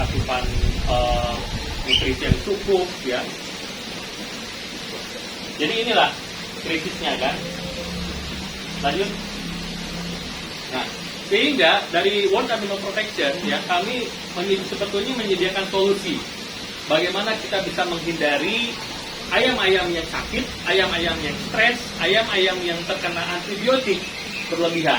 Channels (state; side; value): identical; both; correlation 1.00